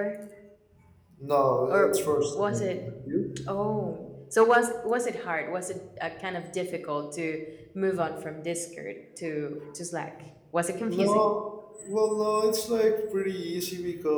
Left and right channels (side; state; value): both; identical; correlation 1.00